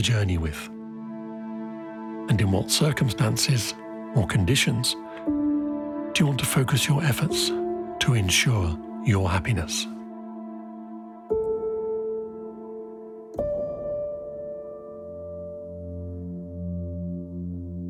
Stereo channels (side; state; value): both; identical; correlation 1.00